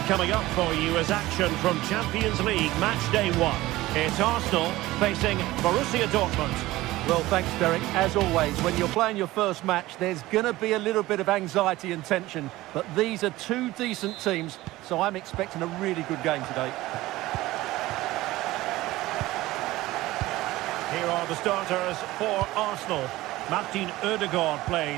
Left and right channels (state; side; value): quieter; left; 17.7 dB